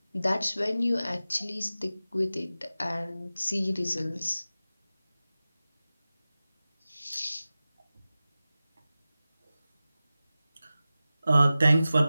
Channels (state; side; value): inverted; both; correlation -0.96